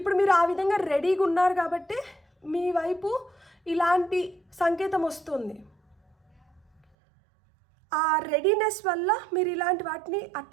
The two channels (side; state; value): left; drops out; at 6.8 s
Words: మీరు ఆ విధంగా రెడీగా ఉన్నారు కాబట్టి మీ వైపు ఇలాంటి సంకేతం వస్తుంది. ఆ రెడీనెస్ వల్ల మీరు ఇలాంటి వాటిని